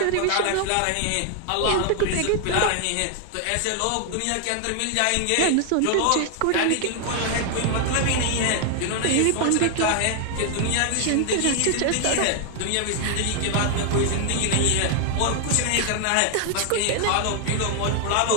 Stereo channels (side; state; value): both; different; correlation 0.00